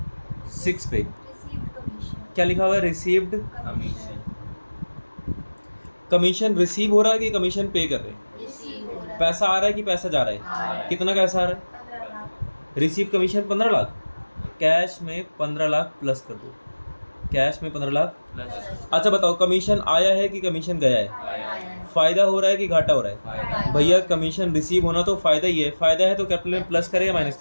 6 पे। क्या लिखा हुआ है? Received commission. रिसीव हो रहा है कि कमीशन पे कर रहे हैं? पैसा आ रहा है कि पैसा जा रहा है? कितना पैसा आ रहा है? Receive commission 15 lakh. कैश में 15 लाख प्लस कर दो, कैश में 15 लाख प्लस। अच्छा बताओ, कमीशन आया है कि कमीशन गया है? फायदा हो रहा है कि घाटा हो रहा है? भैया कमीशन रिसीव होना तो फायदा ही है। फायदा है तो कैपिटल में प्लस करें या माइनस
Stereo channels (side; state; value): both; inverted; correlation -1.00